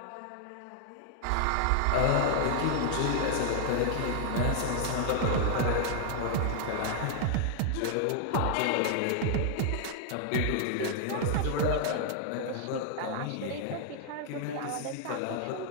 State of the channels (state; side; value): different; both; correlation 0.00